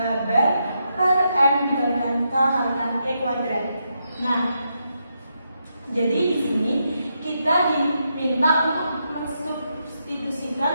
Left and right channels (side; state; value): both; inverted; correlation -0.82